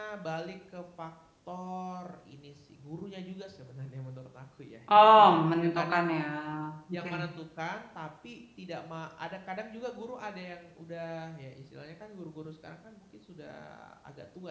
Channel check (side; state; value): both; identical; correlation 1.00